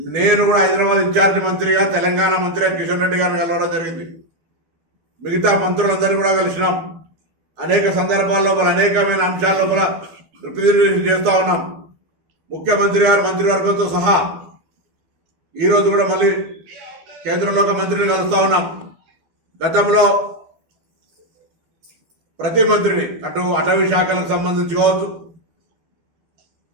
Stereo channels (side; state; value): left; late; 12 ms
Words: నేను కూడా హైదరాబాద్ ఇన్ఛార్జి మంత్రిగా తెలంగాణ మంత్రిగా కిషన్ రెడ్డి గారిని కలవడం జరిగింది. మిగతా మంత్రులందరినీ కూడా కలిసినాం. అనేక సందర్భాల లోపల అనేకమైన అంశాల లోపల రిప్రజెంటేషన్ చేస్తూ ఉన్నాం. ముఖ్యమంత్రి గారు మంత్రివర్గంతో సహా ఈరోజు కూడా మళ్ళీ కేంద్రంలో ఒక మంత్రిని కలుస్తూ ఉన్నాం. గతంలో ప్రతి మంత్రిని అటు అటవీ శాఖలకు సంబంధించి కావచ్చు,